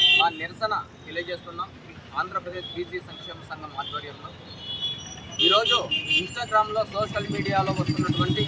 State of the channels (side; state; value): both; identical; correlation 1.00